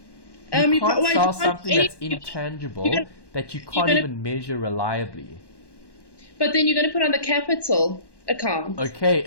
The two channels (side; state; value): right; late; 1.1 ms